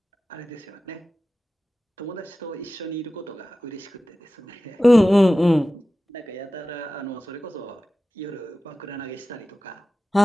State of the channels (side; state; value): both; normal; correlation 0.95